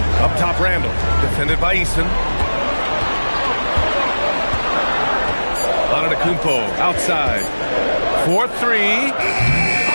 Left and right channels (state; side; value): inverted; both; correlation -1.00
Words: Up top, Randall. Defended by Eason. Antetokounmpo outside. 4-3.